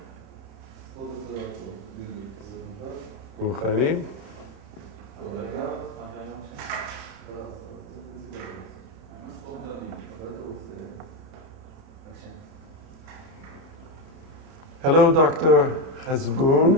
מוכנים? Hello, Dr. Khazbun.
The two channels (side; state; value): left; late; 31 ms